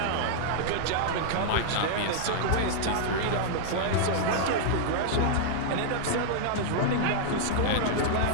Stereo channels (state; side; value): different; both; correlation -0.01